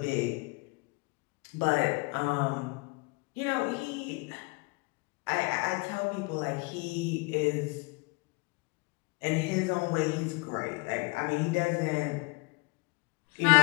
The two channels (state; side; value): quieter; right; 28.5 dB